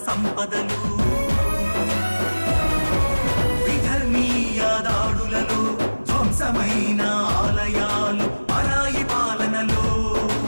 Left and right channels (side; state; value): both; inverted; correlation -1.00